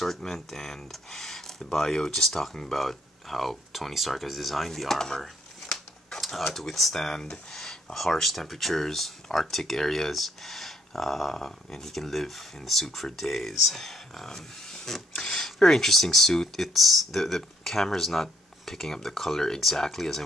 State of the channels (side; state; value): both; normal; correlation 0.68